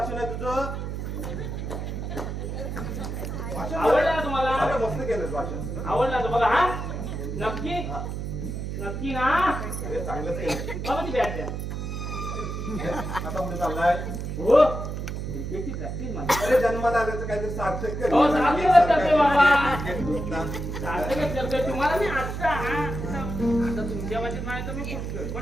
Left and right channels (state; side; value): noise; right; hum, 5 dB below the sound